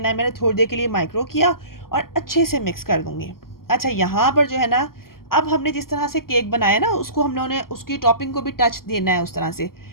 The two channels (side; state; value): right; late; 0.92 ms